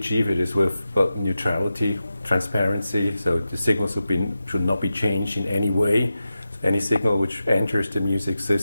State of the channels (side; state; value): both; inverted; correlation -0.92